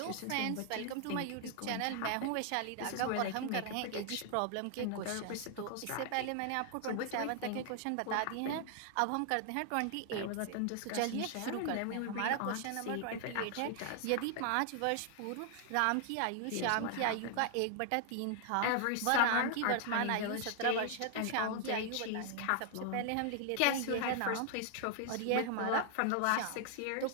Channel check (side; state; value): both; different; correlation 0.00